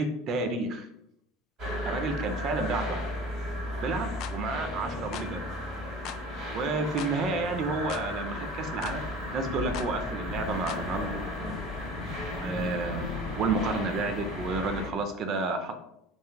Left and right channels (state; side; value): normal; both; correlation 0.41